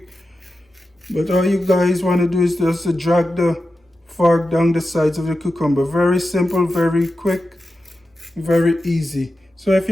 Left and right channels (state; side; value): normal; both; correlation 0.91